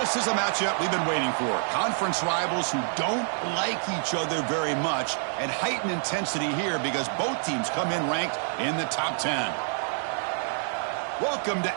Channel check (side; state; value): left; silent; 60 dB below the other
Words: is a matchup we've been waiting for. Conference rivals who don't like each other very much, and heightened intensity here because both teams come in ranked in the top 10. Welcome to